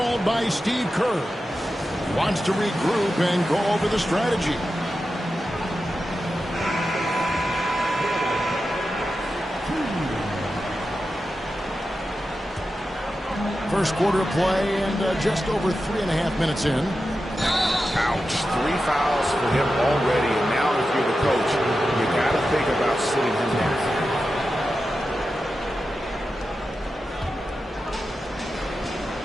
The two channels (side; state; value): both; normal; correlation 0.91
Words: by Steve Kerr. He wants to regroup and go over the strategy. First quarter of play and just over 3.5 minutes in. Ouch. 3 fouls for him already. And now if you're the coach, you got to think about sitting him down.